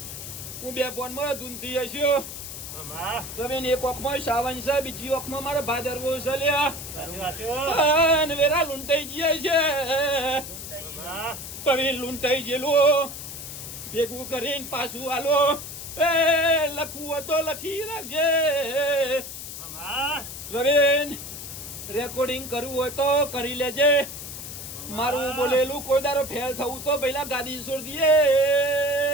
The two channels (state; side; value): noise; left; hiss, 9 dB below the sound